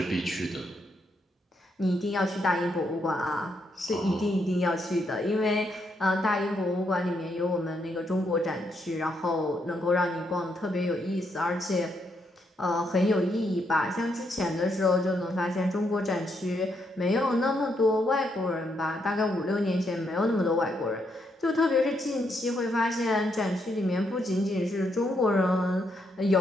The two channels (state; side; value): normal; both; correlation 0.78